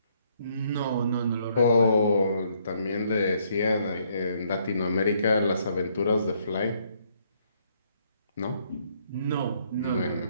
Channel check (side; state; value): both; inverted; correlation -0.69